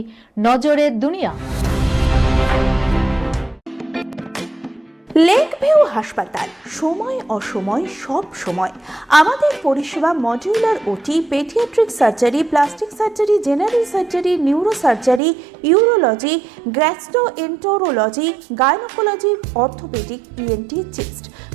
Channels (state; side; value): drops out; left; at 15.2 s